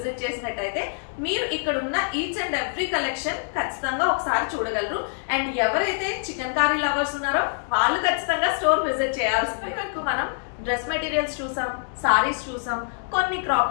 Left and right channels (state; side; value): silent; right; digital silence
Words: చేసినట్టయితే మీరు ఇక్కడ ఉన్న ఈచ్ అండ్ ఎవ్రీ కలెక్షన్ ఖచ్చితంగా ఒకసారి చూడగలరు. అండ్ ఎవరైతే చికెన్ కర్రీ లవర్స్ ఉన్నారో వాళ్ళు ఖచ్చితంగా స్టోర్ విజిట్ చేయాల్సిందే. మనం డ్రెస్ మెటీరియల్స్ చూసాం, సారీస్ చూసాం, కొన్ని క్రాప్